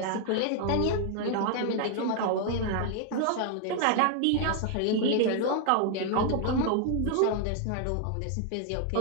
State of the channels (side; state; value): both; different; correlation 0.00